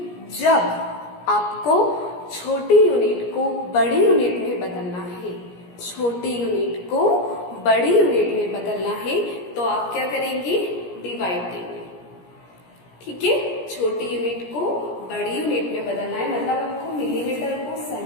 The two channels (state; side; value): late; right; 17 ms